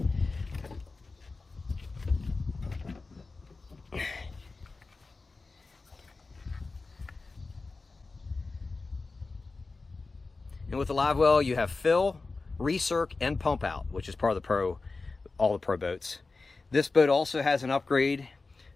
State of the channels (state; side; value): quieter; right; 3.8 dB